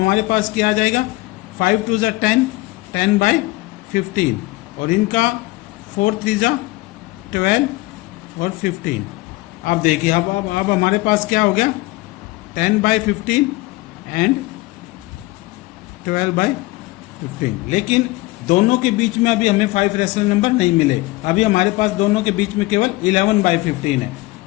पास क्या आ जाएगा, 5 2 = 10, 10/15 और इनका 4 3 = 12 और 15। अब देखिए अब हमारे पास क्या हो गया, 10/15 एंड 12/15। लेकिन दोनों के बीच में अभी हमें 5 रैशनल नंबर नहीं मिले। अभी हमारे पास दोनों के बीच में केवल 11/15 है।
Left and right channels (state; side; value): quieter; right; 20.7 dB